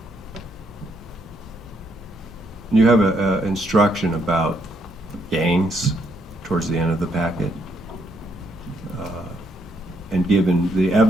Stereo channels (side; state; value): both; normal; correlation 0.74